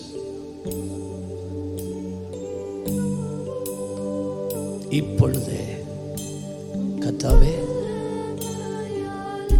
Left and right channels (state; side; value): identical; both; correlation 1.00